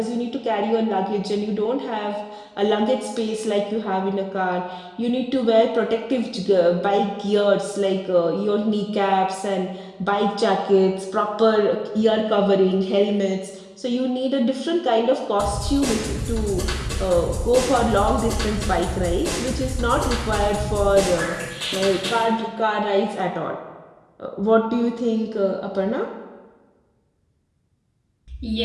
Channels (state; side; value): identical; both; correlation 1.00